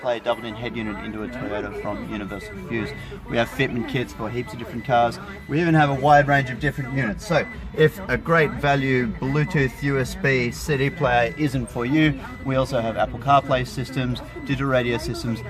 double-in head unit into a Toyota from Universal Fuse. We have fitment kits for heaps of different cars. We even have a wide range of different units. So if a great value Bluetooth USB CD player isn't for you, we also have Apple CarPlay systems, digital radio systems,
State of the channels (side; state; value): both; identical; correlation 1.00